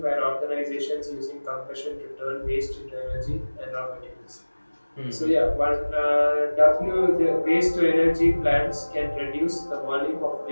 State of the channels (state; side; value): inverted; both; correlation -1.00